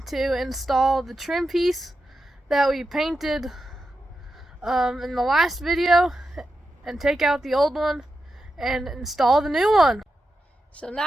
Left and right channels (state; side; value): normal; both; correlation 0.88